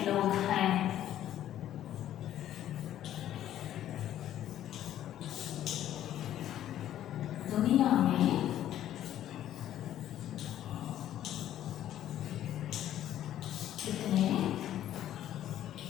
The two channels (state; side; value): quieter; right; 11.9 dB